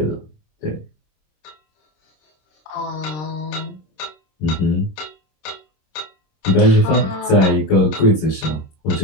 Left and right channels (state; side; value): late; right; 26 ms